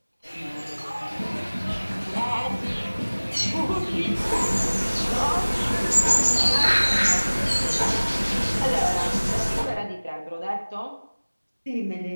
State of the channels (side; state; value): both; inverted; correlation -1.00